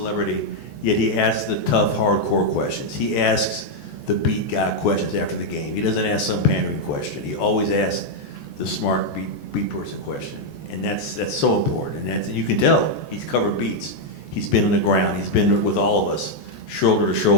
yet he asks the tough, hardcore questions. He asks the beat guy questions after the game. He doesn't ask some pandering question. He always asks the smart beat person question, and that's so important. And you can tell he's covered beats. He's been on the ground. He's been with all of us, shoulder to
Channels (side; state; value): right; late; 14 ms